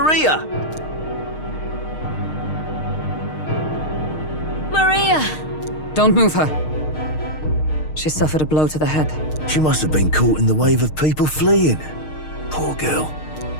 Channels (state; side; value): late; right; 6.5 ms